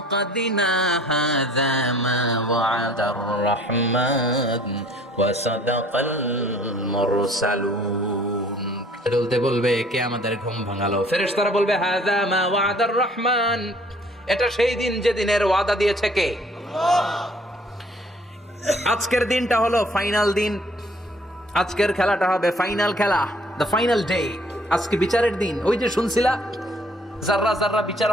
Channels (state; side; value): normal; both; correlation 0.56